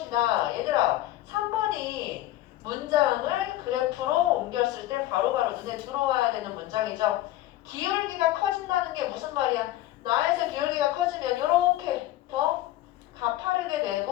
얘들아, 3번이 문장을 그래프로 옮겼을 때 바로바로 눈에 들어와야 되는 문장이죠. 기울기가 커진다는 게 무슨 말이야? 나에서 기울기가 커지면 이렇게 더 가파르게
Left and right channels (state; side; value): quieter; right; 15.1 dB